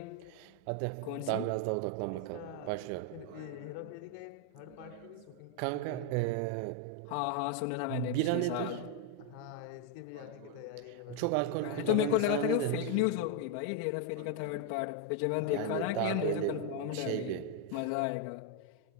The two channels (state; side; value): different; both; correlation 0.01